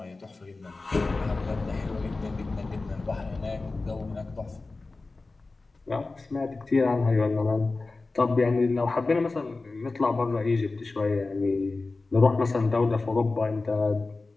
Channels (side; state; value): right; quieter; 3.5 dB